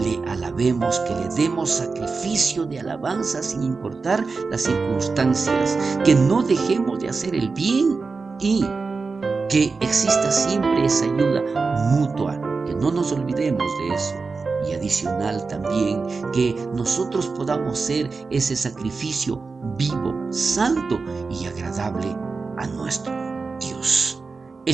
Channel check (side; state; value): left; quieter; 4.4 dB